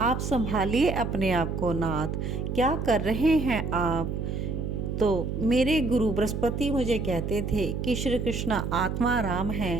संभालिए अपने आप को नाथ, क्या कर रहे हैं आप। तो मेरे गुरु बृहस्पति मुझे कहते थे कि श्री कृष्ण आत्मा राम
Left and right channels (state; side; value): noise; right; hum, 3 dB below the sound